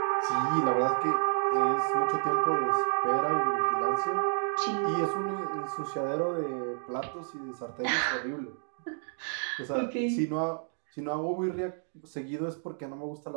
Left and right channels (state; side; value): silent; left; digital silence